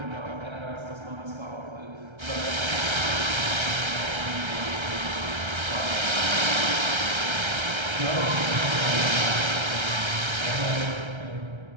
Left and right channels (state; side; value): late; left; 1.3 ms